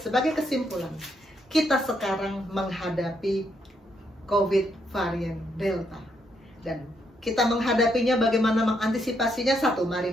sebagai kesimpulan, kita sekarang menghadapi COVID varian Delta, dan kita menghadapinya bagaimana mengantisipasinya. 1,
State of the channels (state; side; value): normal; both; correlation 0.76